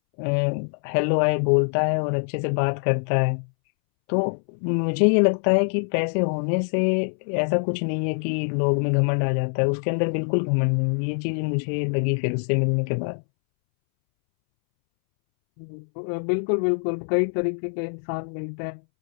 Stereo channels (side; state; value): right; silent; 63 dB below the other